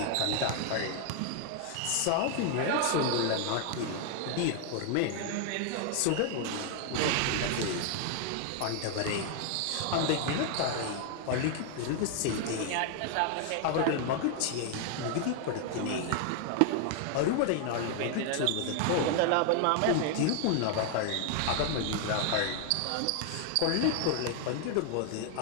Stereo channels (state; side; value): different; both; correlation 0.00